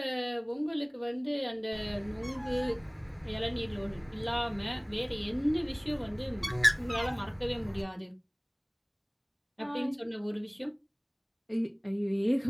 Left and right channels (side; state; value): both; identical; correlation 1.00